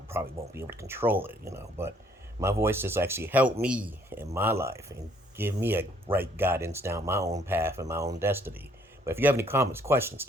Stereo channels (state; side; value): normal; both; correlation 0.64